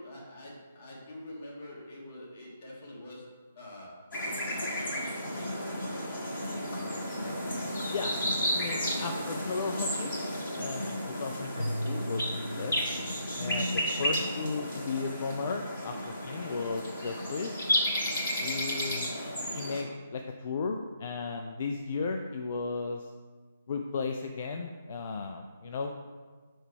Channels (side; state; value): both; inverted; correlation -0.70